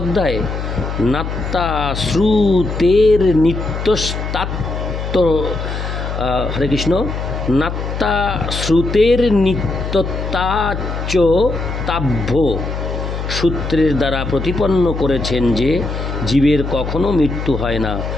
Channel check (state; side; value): noise; left; hum, 5 dB below the sound